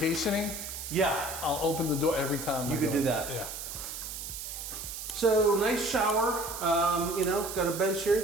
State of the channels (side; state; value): right; noise; hiss, 8 dB below the sound